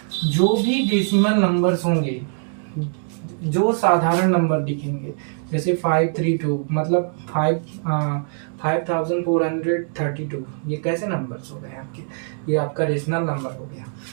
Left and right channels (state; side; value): silent; left; 61 dB below the other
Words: जो भी डेसिमल नंबर्स होंगे, जो साधारण नंबर दिखेंगे, जैसे 532 मतलब 5432, ये कैसे नंबर्स हो गए आपके? ये आपका रेशनल नंबर हो गया।